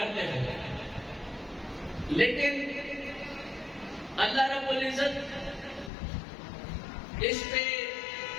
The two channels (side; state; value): right; drops out; at 5.9 s